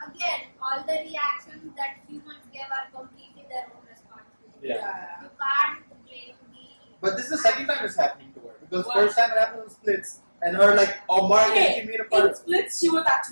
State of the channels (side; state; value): both; inverted; correlation -1.00